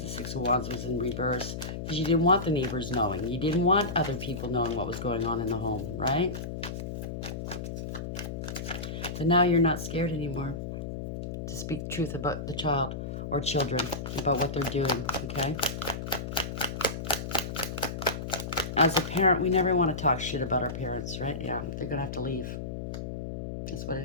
Six of Wands was in reverse. Because you didn't want the neighbors knowing. You didn't want other people knowing what was going on in the home, right? But now you're not scared anymore to speak truth about the child or children, about what they're doing, okay? As a parent, we never want to talk shit about our parents, right? Yeah, they're going to have to leave. That's what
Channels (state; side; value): noise; left; hum, 6 dB below the sound